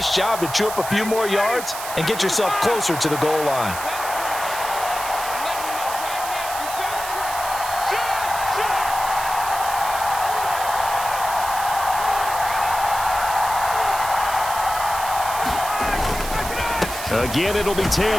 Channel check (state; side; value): noise; right; hiss, 9 dB below the sound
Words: job to chew up a few more yards and get yourself closer to the goal line. Again, it'll be